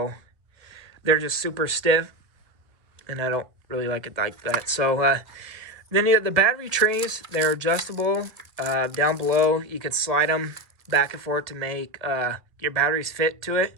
they're just super stiff. And I don't really like it like that. So, then the battery trays, they're adjustable. Down below, you can slide them back and forth to make your batteries fit to it.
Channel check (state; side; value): late; left; 1.6 ms